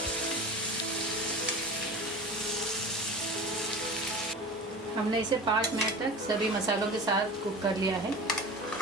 हमने इसे 5 मिनट तक सभी मसालों के साथ कुक कर लिया है।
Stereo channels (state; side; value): normal; both; correlation 0.34